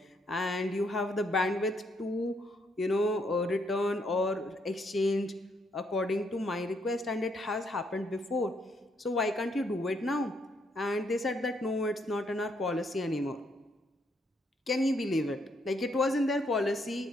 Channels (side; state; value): both; normal; correlation 0.73